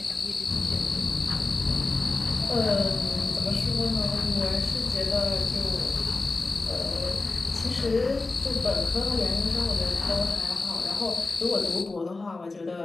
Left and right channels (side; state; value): right; quieter; 3.5 dB